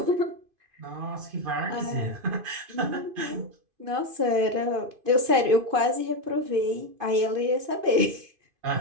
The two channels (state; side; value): late; left; 2.5 ms